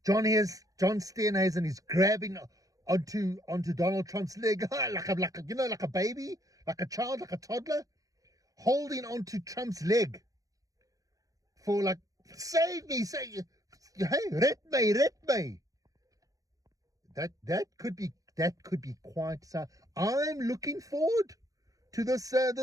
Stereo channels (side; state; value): left; late; 0.17 ms